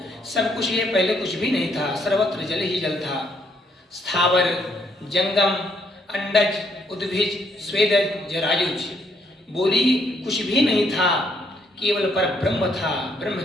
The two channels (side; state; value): both; normal; correlation 0.71